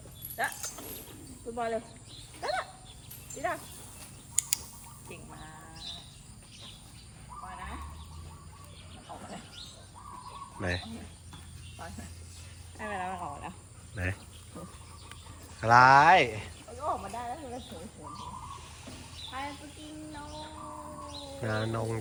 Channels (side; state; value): both; identical; correlation 1.00